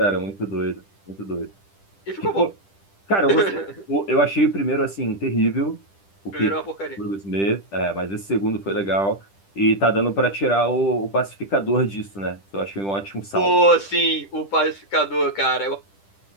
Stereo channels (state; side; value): late; right; 10 ms